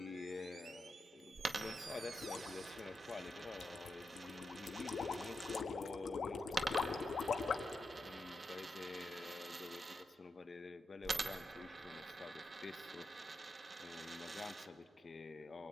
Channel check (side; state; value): both; normal; correlation 0.87